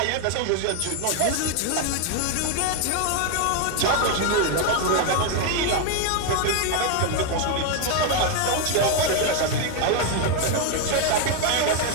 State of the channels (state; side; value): different; both; correlation 0.01